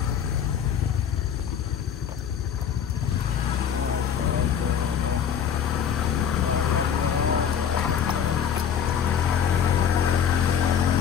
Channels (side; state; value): right; quieter; 8.1 dB